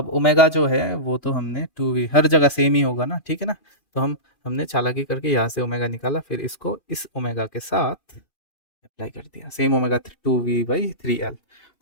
ओमेगा जो है वो तो हमने 2v, हर जगह सेम ही होगा ना, ठीक है ना। तो हमने चालाकी करके यहाँ से ओमेगा निकाला, फिर इसको इस ओमेगा के साथ अप्लाई कर दिया, सेम ओमेगा 2v/3l।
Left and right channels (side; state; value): right; late; 2.4 ms